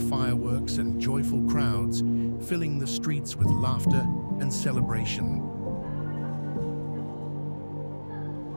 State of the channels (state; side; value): inverted; both; correlation -1.00